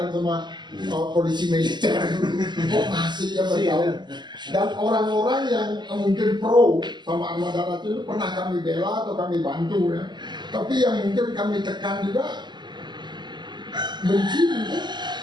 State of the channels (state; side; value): late; left; 0.21 ms